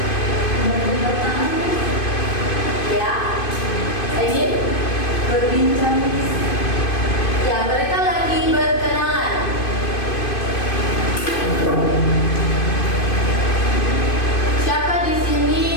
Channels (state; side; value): late; right; 2.5 ms